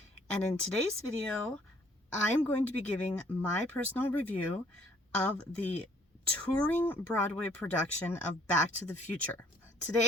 And in today's video, I'm going to be giving my personal review of the touring Broadway production of Back to the Future.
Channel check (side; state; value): both; normal; correlation 0.61